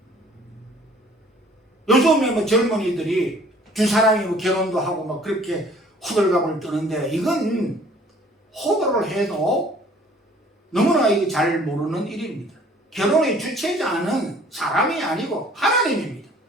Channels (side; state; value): both; normal; correlation 0.54